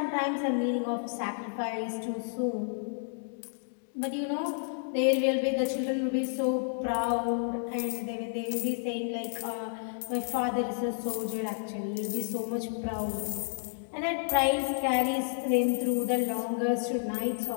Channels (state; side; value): silent; right; digital silence